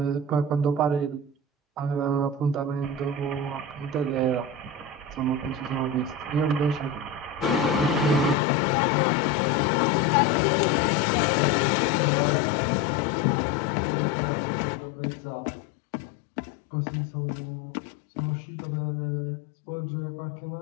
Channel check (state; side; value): drops out; right; at 8.3 s